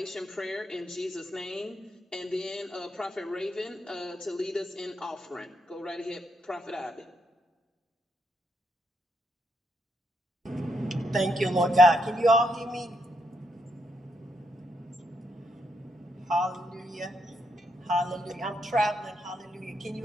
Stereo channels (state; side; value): normal; both; correlation 0.79